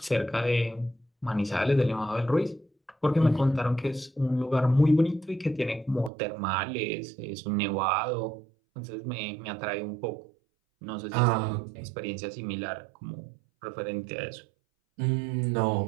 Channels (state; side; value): drops out; left; at 6.1 s